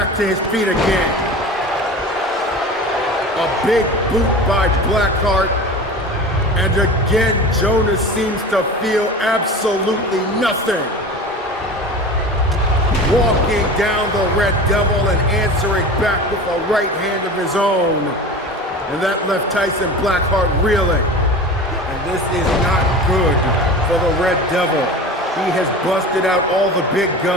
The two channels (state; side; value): normal; both; correlation 0.34